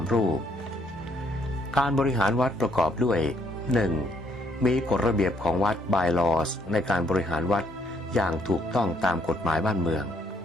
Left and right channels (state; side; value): normal; both; correlation 0.69